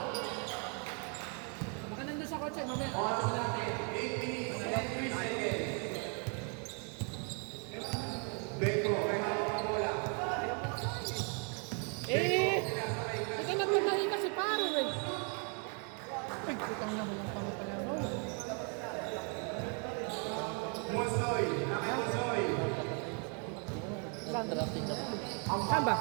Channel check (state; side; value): quieter; left; 38.5 dB